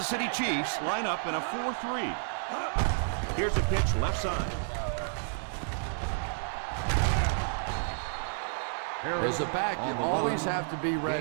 City Chiefs line up in a 4-3. Here's a pitch left side. As a back, you always have to be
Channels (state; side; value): silent; left; 57 dB below the other